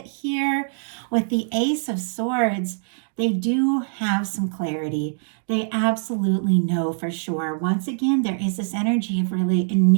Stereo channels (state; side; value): silent; left; digital silence